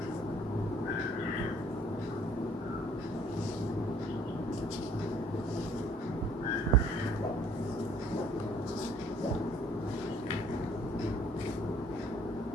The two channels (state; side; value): normal; both; correlation 0.59